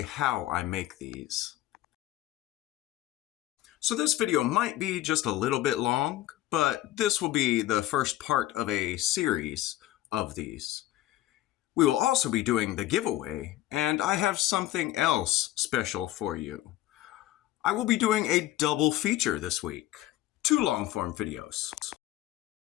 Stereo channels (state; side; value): quieter; right; 14.8 dB